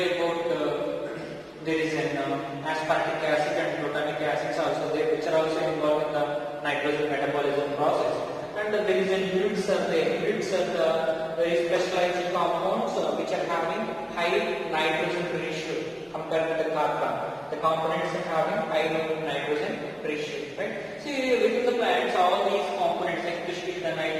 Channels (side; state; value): both; identical; correlation 1.00